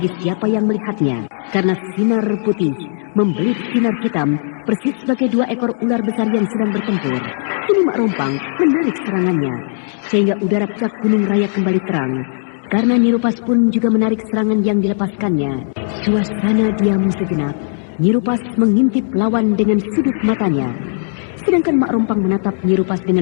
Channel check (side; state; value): right; silent; digital silence